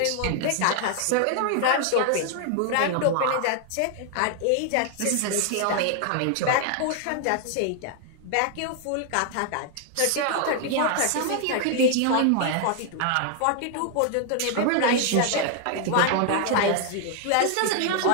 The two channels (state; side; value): different; both; correlation 0.00